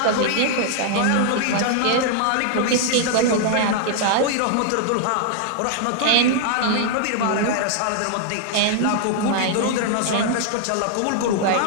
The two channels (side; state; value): both; different; correlation 0.00